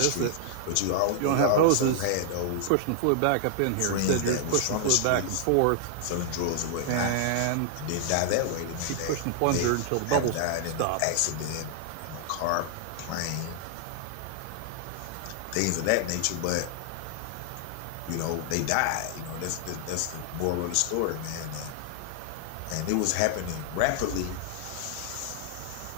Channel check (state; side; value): different; both; correlation 0.00